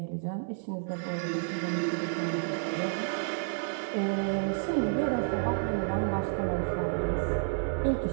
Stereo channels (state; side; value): silent; left; 58 dB below the other